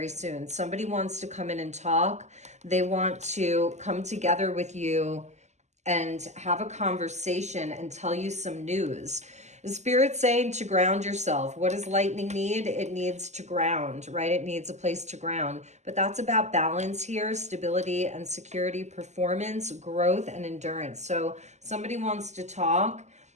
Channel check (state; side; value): late; left; 0.33 ms